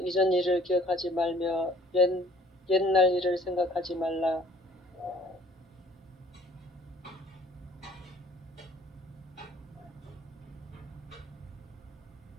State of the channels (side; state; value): both; normal; correlation 0.55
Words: 이전 일을 기억하지 말며 옛날 일을 생각하지 말라.